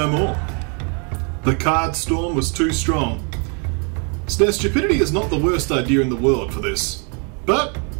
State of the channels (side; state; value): left; quieter; 37.2 dB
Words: more. The card storm was too strong. So now stupidity is not the worst idea in the world for this. But,